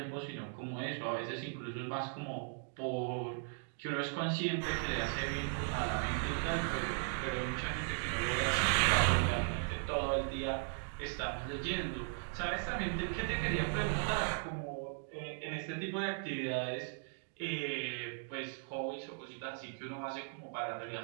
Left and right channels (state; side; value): silent; left; 53 dB below the other